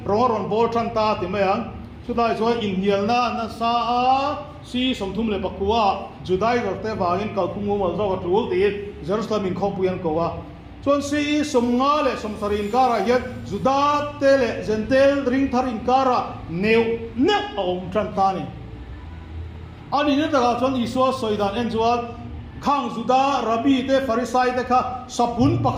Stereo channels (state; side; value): identical; both; correlation 1.00